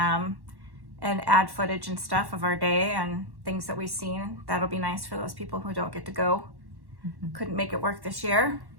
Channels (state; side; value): late; left; 1.1 ms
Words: add footage and stuff of our day and things that we've seen. That'll be nice for those people who don't get to go. Couldn't make it work this year.